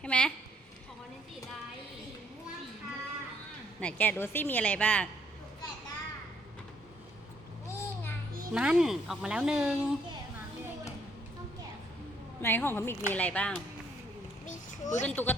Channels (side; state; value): both; normal; correlation 0.67